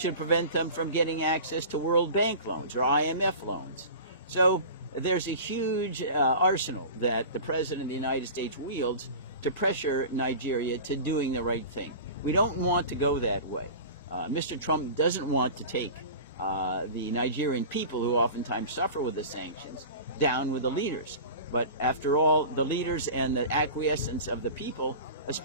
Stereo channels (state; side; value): inverted; both; correlation -0.35